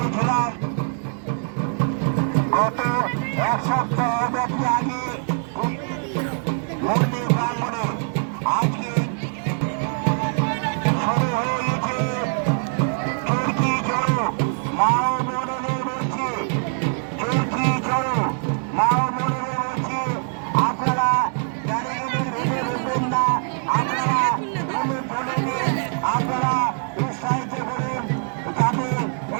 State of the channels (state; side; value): silent; left; 56 dB below the other